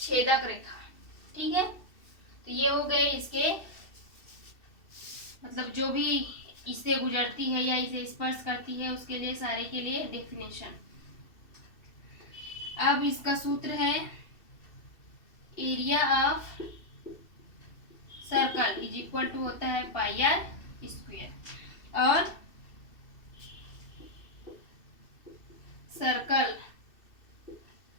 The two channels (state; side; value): late; right; 2.7 ms